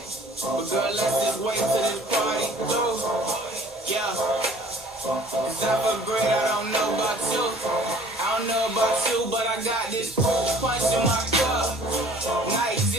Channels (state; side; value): normal; both; correlation 0.52